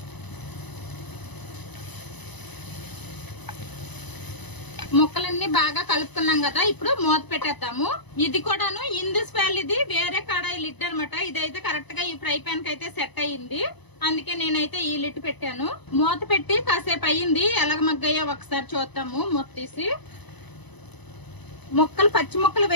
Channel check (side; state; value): right; late; 1.0 ms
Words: ముక్కలన్నీ బాగా కలుపుకున్నాం కదా, ఇప్పుడు మూత పెట్టేద్దాము. ఇది కూడాను ఇందస్ వ్యాలీది వేరే కడాయి లిడ్ అనమాట. ఇదైతే కరెక్ట్ గా ఈ ఫ్రై ప్యాన్ కి అయితే సెట్ అయ్యింది. అందుకే నేనైతే ఈ లిడ్ పెట్టాను. మూత పెట్టి కాసేపు అయ్యింది. ఎలాగ మగ్గయ్యో ఒకసారి చూద్దాము. మూత తీసి ముక్కలు పచ్చి ముక్కలు